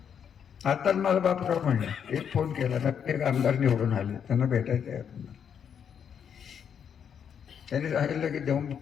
आता मला बापराव म्हणले, एक फोन केला तर एक आमदार निवडून आले, त्यांना भेटायचं आहे आपण. त्यांनी सांगितलं की देऊन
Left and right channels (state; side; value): quieter; right; 7.9 dB